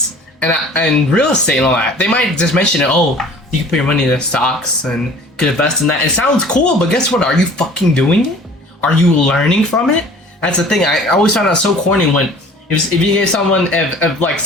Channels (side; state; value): both; normal; correlation 0.48